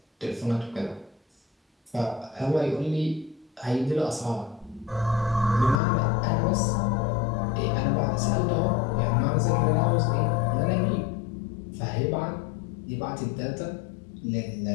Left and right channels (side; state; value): right; drops out; at 5.8 s